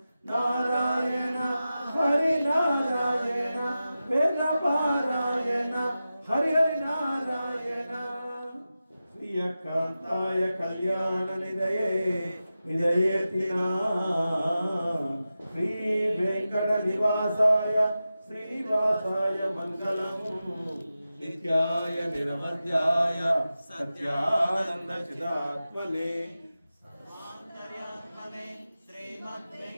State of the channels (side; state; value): both; inverted; correlation -0.93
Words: నారాయణ హరి నారాయణ వేద పారాయణ హరి హరి నారాయణ శ్రీయకాంతాయ కళ్యాణ నిదయే నిదయేతినా శ్రీ వెంకట నివాసాయ శ్రీవాసాయ మంగళము నిత్యాయ నిరమధ్యాయ సత్యానంద చిదాత్మనే సర్వాంతర్యాత్మనే శ్రీమద్